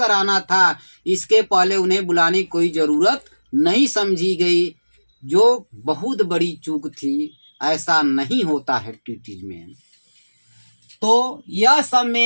था। इसके पहले उन्हें बुलाने की कोई जरूरत नहीं समझी गई, जो बहुत बड़ी चूक थी। ऐसा नहीं होता है ट्रीटीज में। तो यह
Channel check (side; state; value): both; inverted; correlation -1.00